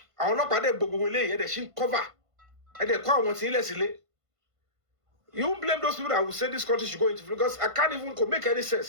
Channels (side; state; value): left; late; 1.5 ms